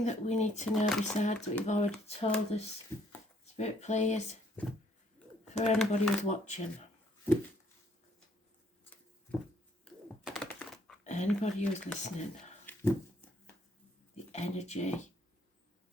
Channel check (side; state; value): both; normal; correlation 0.65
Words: that we need to know besides what you've already told us, Spirit players, for anybody who's watching. Anybody who's listening. The energy